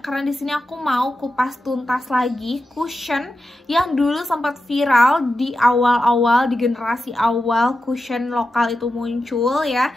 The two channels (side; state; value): both; normal; correlation 0.90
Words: di sini aku mau kupas tuntas lagi cushion yang dulu sempat viral di awal-awal, di generasi awal cushion lokal itu muncul ya.